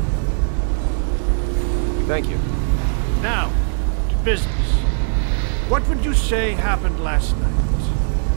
Thank you. Now, to business. What would you say happened last night?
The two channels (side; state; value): left; silent; 66 dB below the other